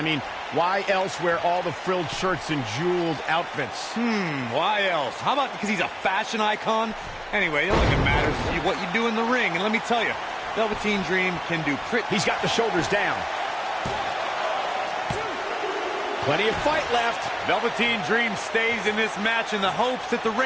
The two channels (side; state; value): both; identical; correlation 1.00